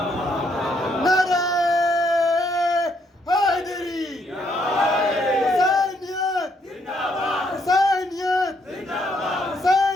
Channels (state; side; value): normal; both; correlation 0.72